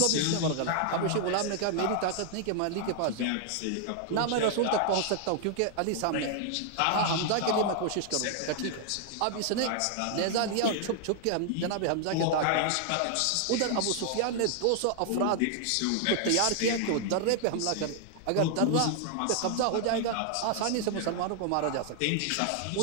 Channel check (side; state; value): both; different; correlation 0.00